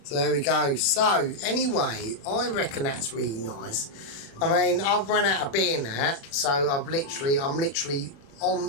So there we go. So anyway, I reckon that's really nice. I mean, I've run out of beer now, so I'm literally on.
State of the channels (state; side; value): late; right; 36 ms